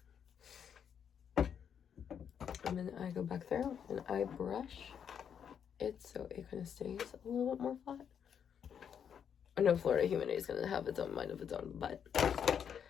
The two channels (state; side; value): quieter; right; 8.0 dB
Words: And then I go back there and I brush it so it kind of stays a little bit more flat. I know Florida Humidity is going to have its own mind of its own, but